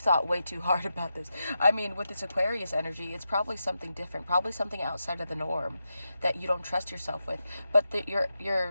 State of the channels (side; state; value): both; inverted; correlation -0.88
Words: way too hard about this. I mean, with this Aquarius energy, it's probably something different, probably something outside of the norm that you don't trust yourself with. But